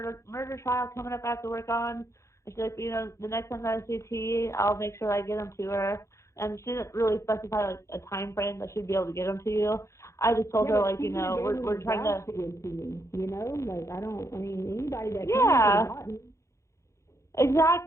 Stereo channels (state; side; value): late; right; 0.14 ms